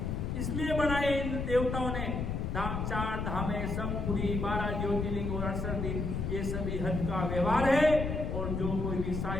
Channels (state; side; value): noise; left; rumble, 2 dB below the sound